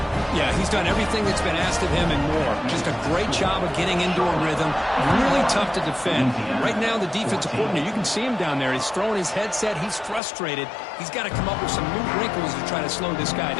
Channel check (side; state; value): right; drops out; at 10.2 s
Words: Yeah, he's done everything that's been asked of him and more. Just a great job of getting into a rhythm. Really tough to defend. Right now, the defensive coordinator, you can see him down there. He's throwing his headset. He's frustrated. He's got to come up with some new wrinkles to try to slow this guy